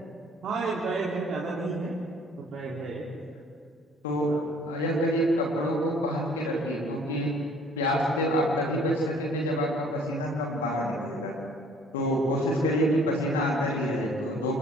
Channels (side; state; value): both; normal; correlation 0.56